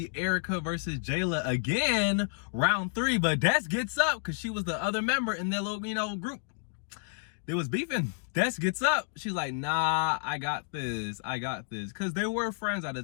Erica versus Jayla again, round 3, but Des gets up because she was the other member in their little, group. They was beefing. Des gets up. She's like, nah, I got this. Because they were friends at the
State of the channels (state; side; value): silent; right; digital silence